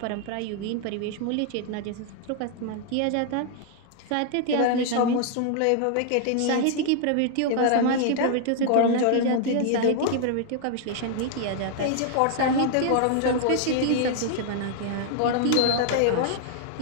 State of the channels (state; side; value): different; both; correlation 0.00